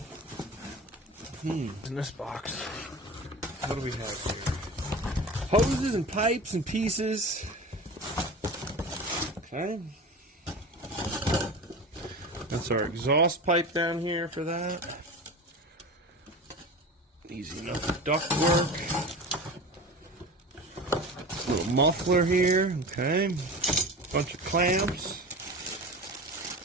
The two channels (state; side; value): normal; both; correlation 0.32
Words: In this box, what do we have here? Hoses and pipes and pieces. Okay. That's our exhaust pipe down here for that. Easy enough duct work. Little muffler here, okay. Bunch of clamps.